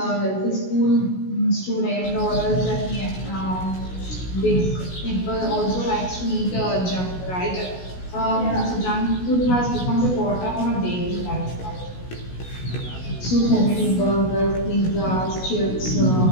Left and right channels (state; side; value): late; right; 16 ms